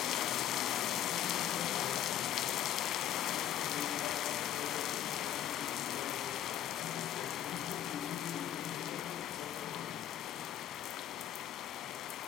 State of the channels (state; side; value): quieter; right; 11.2 dB